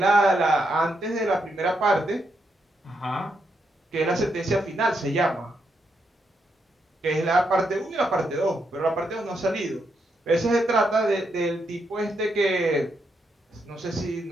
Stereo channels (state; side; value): normal; both; correlation 0.80